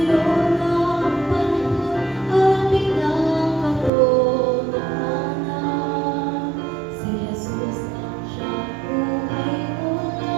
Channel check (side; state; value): left; drops out; at 3.9 s